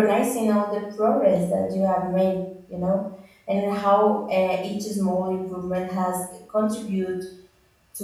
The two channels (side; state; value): both; identical; correlation 1.00